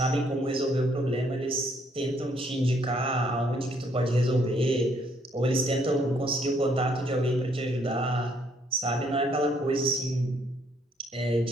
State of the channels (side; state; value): both; normal; correlation 0.68